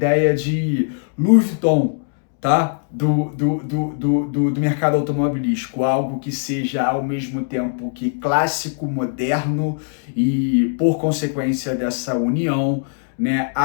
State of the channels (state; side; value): silent; right; 66 dB below the other